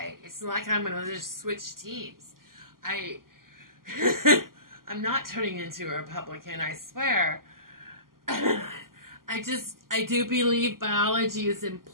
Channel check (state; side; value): late; left; 0.92 ms